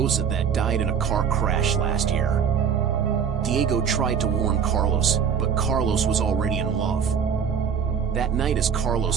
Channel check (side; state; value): left; quieter; 7.2 dB